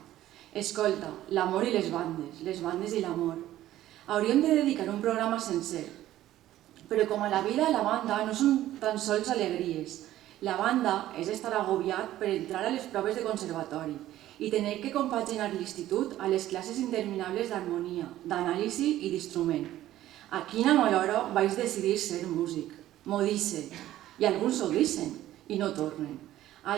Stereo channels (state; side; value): quieter; left; 13.8 dB